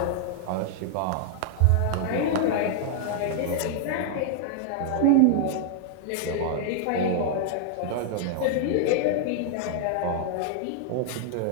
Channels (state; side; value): different; both; correlation -0.01